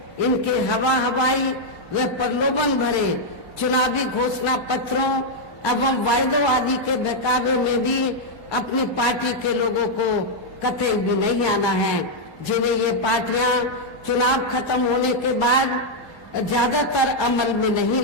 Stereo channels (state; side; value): normal; both; correlation -0.02